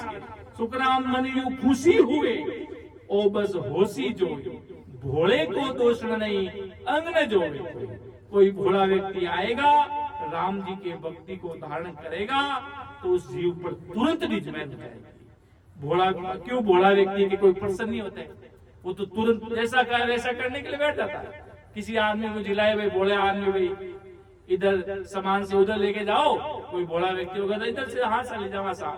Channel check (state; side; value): identical; both; correlation 1.00